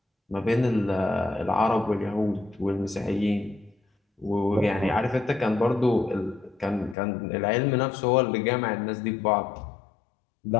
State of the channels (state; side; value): drops out; right; at 7.0 s